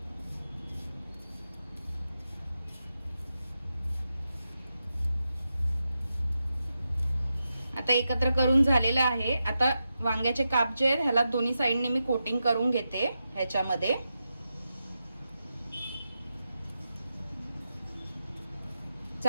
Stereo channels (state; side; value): inverted; both; correlation -0.89